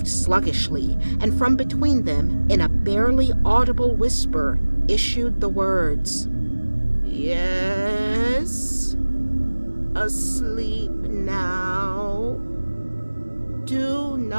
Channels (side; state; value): both; inverted; correlation -1.00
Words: sluggishly, and from between them, in a barely audible whisper, issued the words, "Yes, asleep now. Do